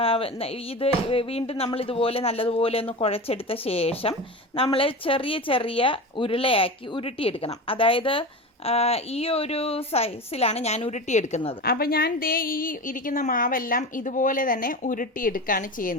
ഇത് വീണ്ടും നമ്മളിതുപോലെ നല്ലതുപോലെ ഒന്ന് കുഴച്ചെടുത്ത ശേഷം നമ്മൾ ചെറിയ ചെറിയ ഉരുളയാക്കി ഉരുട്ടിയെടുക്കണം. അതായത് ഈ ഒരു സൈസിലാണ് ഞാൻ ഉരുട്ടിയെടുക്കുന്നത്. അപ്പോൾ ഞാൻ ഈ ഇരിക്കുന്ന മാവെല്ലാം ഇതുപോലെ തന്നെ ഉരുട്ടിയെടുക്കുകയാണ്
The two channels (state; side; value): normal; both; correlation 0.27